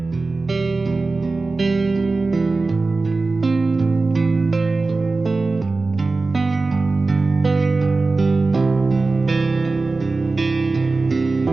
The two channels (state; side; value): quieter; left; 3.6 dB